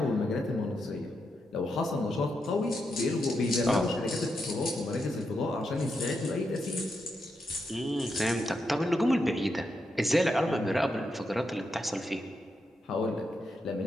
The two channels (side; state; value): both; normal; correlation 0.84